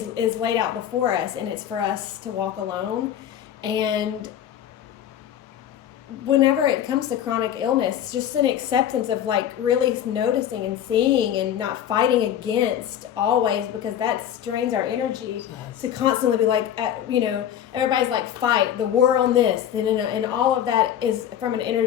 laid out before us, and it's for us to walk alone. And whenever it comes to chronic illness, it's just an acceptance of like really noticing and seeing and not fighting against always, because that strains our energy to constantly be like, everybody's like, fight the war on this, and all of that is from an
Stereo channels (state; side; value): quieter; right; 10.3 dB